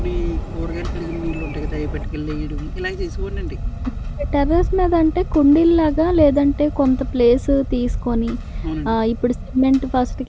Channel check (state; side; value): identical; both; correlation 1.00